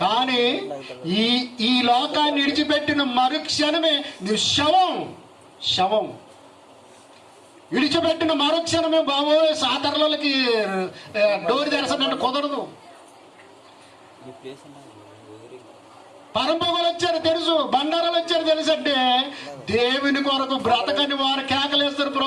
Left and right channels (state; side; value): identical; both; correlation 1.00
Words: కానీ ఈ లోకాన్ని విడిచిపెట్టిన మరుక్షణమే నువ్వు శవం విడిచిపెట్టిన మరుక్షణమే బాబోయ్ సాతరులకి డోర్ తెరసనంటే కుదరదు. పరంపొగలు వచ్చారు తెలుసు, బండారాలు వచ్చారు తెలుసు. అంటే దేవుని కొరకు బ్రతకని వారు కేకలేస్తారు,